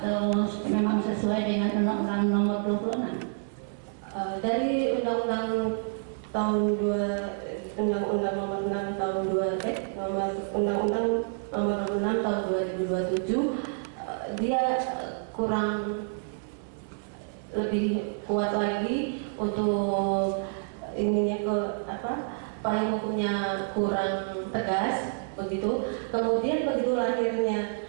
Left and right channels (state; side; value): silent; left; 56 dB below the other